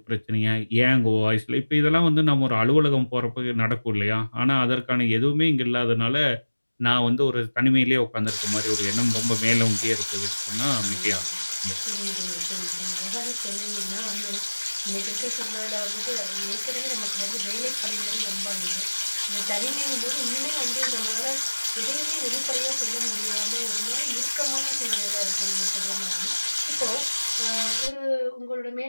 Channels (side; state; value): both; inverted; correlation -1.00